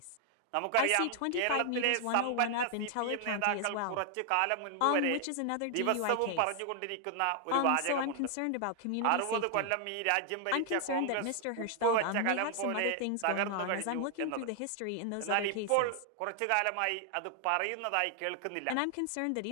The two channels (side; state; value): both; different; correlation 0.00